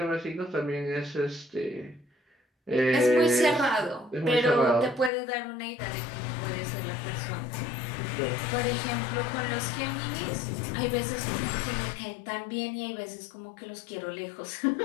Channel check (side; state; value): right; drops out; at 5.1 s